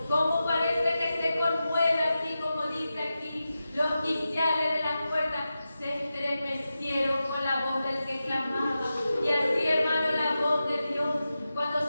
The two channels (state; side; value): inverted; both; correlation -0.92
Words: como parece que se conmueve, así como dice aquí, los quiciales de las puertas se estremecieron con la voz del que clamaba. Y así, hermano, la voz de Dios, cuando